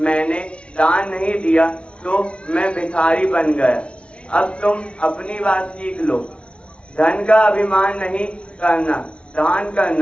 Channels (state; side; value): late; right; 0.059 ms